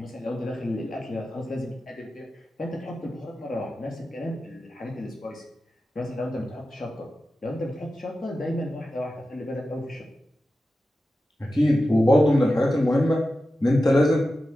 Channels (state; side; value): normal; both; correlation 0.93